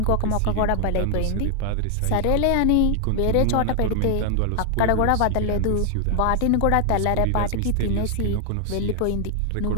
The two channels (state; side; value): different; both; correlation 0.00